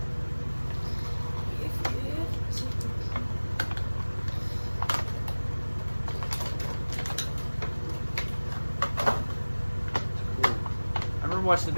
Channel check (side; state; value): both; inverted; correlation -1.00